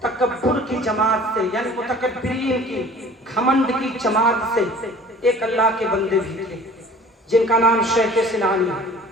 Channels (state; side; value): normal; both; correlation 0.46